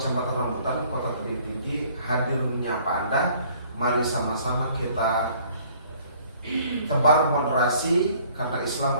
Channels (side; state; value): both; inverted; correlation -0.57